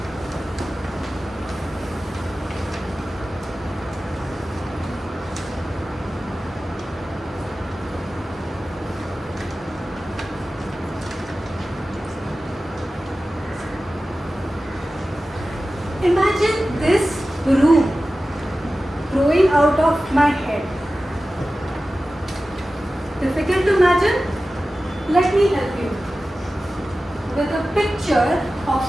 Imagine this room growing out of my head. Difficult to imagine? Let me help you with a picture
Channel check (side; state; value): both; normal; correlation 0.95